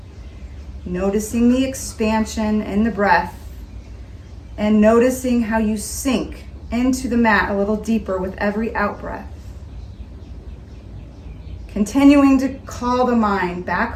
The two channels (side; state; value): both; identical; correlation 1.00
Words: Noticing the expansion in the breath. And noticing how you sink into the mat a little deeper with every out-breath. Continuing to call the mind